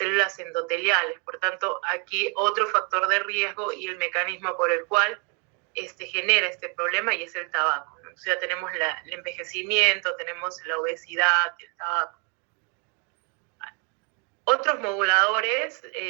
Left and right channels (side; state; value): left; quieter; 35.2 dB